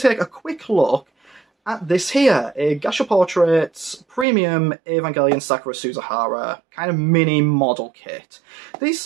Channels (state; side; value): drops out; left; at 4.2 s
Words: take a quick look at this here, a Gasha Portraits Premium Evangelion Sakura Suzahara kind of mini model kit. These